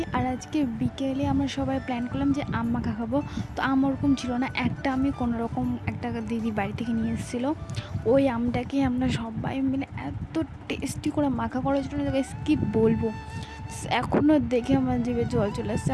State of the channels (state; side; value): identical; both; correlation 1.00